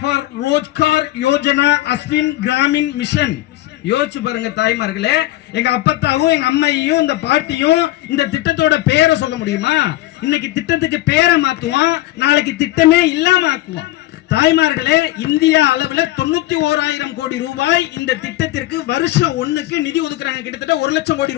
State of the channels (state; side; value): quieter; right; 16.7 dB